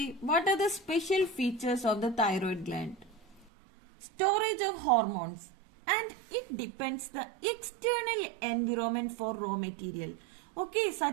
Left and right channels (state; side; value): drops out; left; at 3.5 s